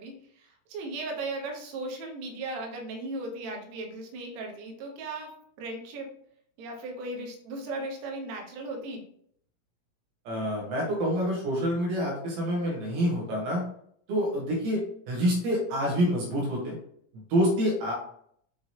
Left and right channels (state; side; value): late; left; 17 ms